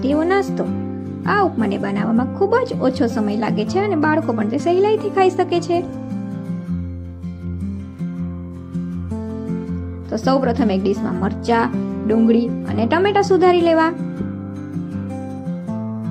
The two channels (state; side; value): identical; both; correlation 1.00